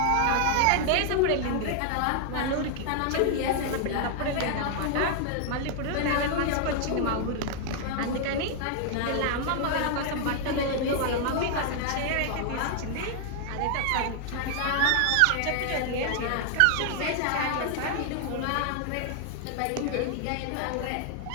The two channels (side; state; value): both; different; correlation 0.00